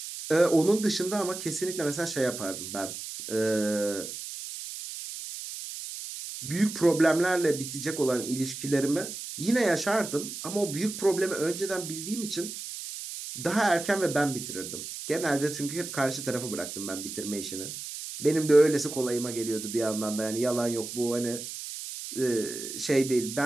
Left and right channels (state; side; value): noise; right; hiss, 8 dB below the sound